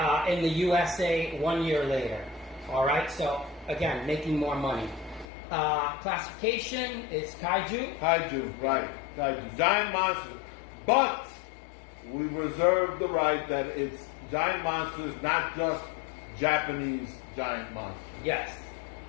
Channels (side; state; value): right; drops out; at 5.2 s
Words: in the USA 1 year later. All right, so again, making more money. Classification is kaiju. Kaiju, right. Kaiju. Giant monsters. But we reserve the right that it's giant monsters, not just Japanese giant monsters. Yes.